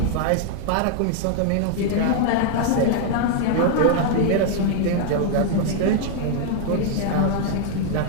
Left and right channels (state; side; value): different; both; correlation 0.00